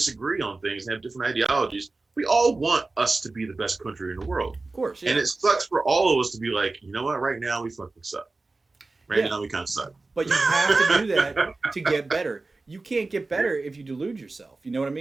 on things and have different ideologies, we all want us to be the best country in the world. Of course, yeah. And it sucks for all of us to be like, you know what? Right now we fucking suck. Right now we kind of suck. But you have to do that to get better. You can't get better if you delude yourself. You know what I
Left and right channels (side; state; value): left; quieter; 3.5 dB